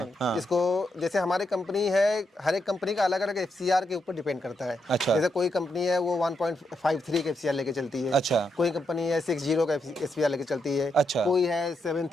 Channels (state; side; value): normal; both; correlation 0.82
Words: इसको जैसे हमारी कंपनी है, हर एक कंपनी का अलग अलग FCR के ऊपर डिपेंड करता है। अच्छा, जैसे कोई कंपनी है वो 1.53 का FCR लेके चलती है। अच्छा, कोई कंपनी है 60 का FCR लेके चलती है। अच्छा, कोई है